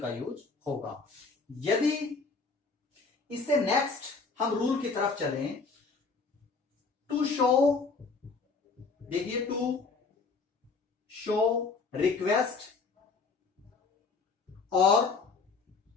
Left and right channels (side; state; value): right; quieter; 4.4 dB